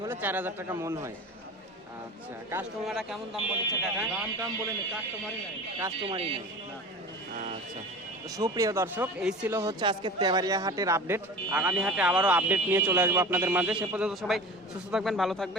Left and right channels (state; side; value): normal; both; correlation 0.36